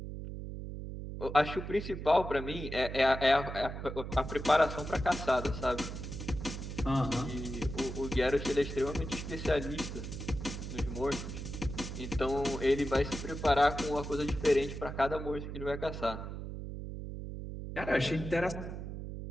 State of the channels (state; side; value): noise; right; hum, 7 dB below the sound